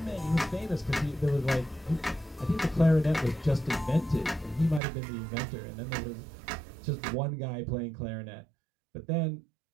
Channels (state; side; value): drops out; left; at 4.8 s